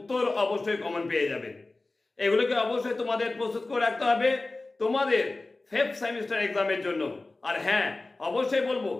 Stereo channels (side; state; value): right; quieter; 3.2 dB